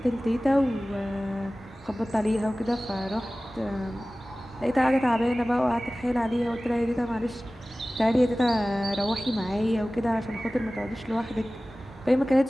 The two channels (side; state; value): both; normal; correlation 0.97